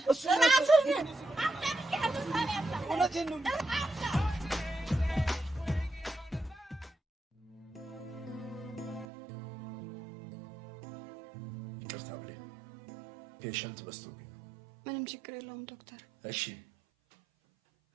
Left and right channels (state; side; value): drops out; left; at 9.1 s